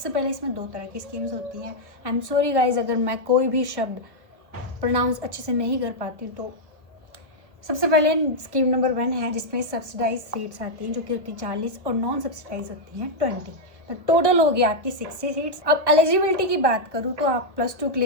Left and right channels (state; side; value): late; left; 1.3 ms